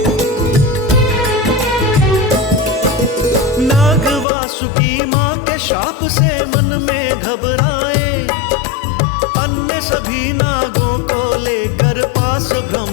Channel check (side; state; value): right; drops out; at 4.2 s